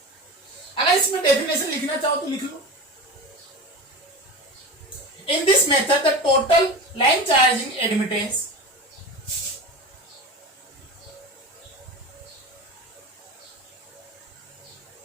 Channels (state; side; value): normal; both; correlation 0.29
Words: अगर इसमें डेफिनेशन लिखना चाहो तो लिख लो। In this method the total line charging admittance